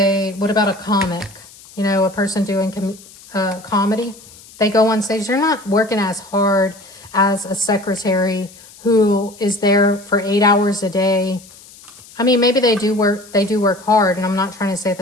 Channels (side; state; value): left; noise; hiss, 22 dB below the sound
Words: what about a comic? You know, a person doing comedy. They go on stage. They're not working as hard as a secretary who is there for 8 hours a day. I mean, maybe they do work hard, and I'm not trying to say